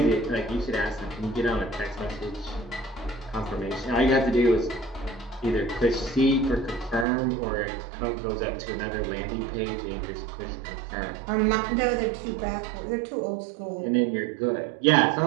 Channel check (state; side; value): drops out; left; at 7.1 s